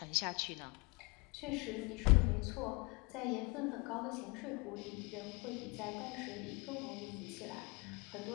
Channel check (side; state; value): right; quieter; 27.7 dB